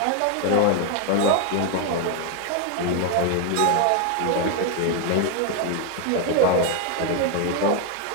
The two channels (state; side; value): different; both; correlation 0.01